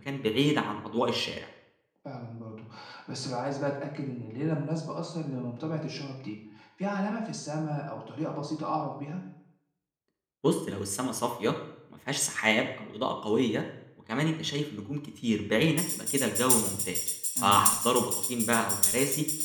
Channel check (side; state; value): both; identical; correlation 1.00